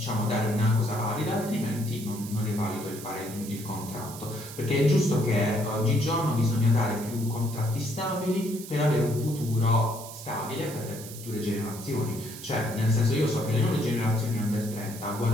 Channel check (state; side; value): noise; right; hiss, 13 dB below the sound